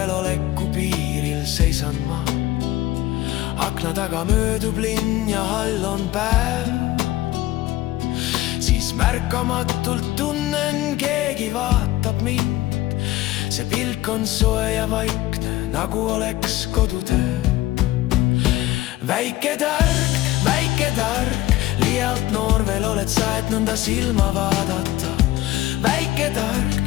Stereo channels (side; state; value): right; quieter; 16.2 dB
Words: piiril seisan ma. Akna taga möödub linn ja all on päev. Siis märkamatult tunnen, keegi vaatab mind. See pilk on soe ja vaikne, nagu oleks kodutöö. Väike tark, liialt noor veel oled sa, et nõnda silma vaadata. Väike